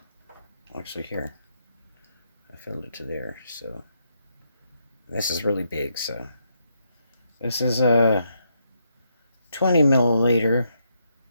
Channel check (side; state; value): both; inverted; correlation -0.79